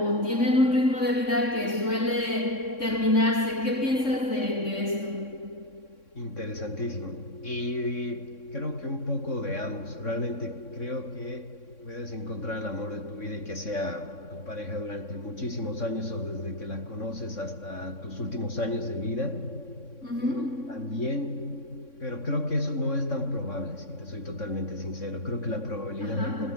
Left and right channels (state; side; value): late; right; 3.6 ms